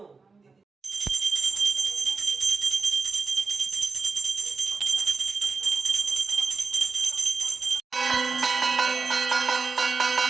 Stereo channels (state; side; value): quieter; left; 4.5 dB